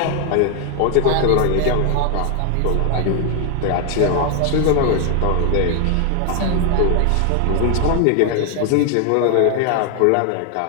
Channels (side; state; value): both; different; correlation 0.00